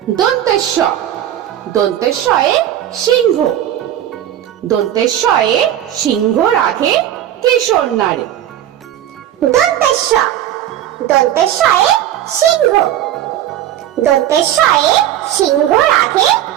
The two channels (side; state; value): left; quieter; 11.7 dB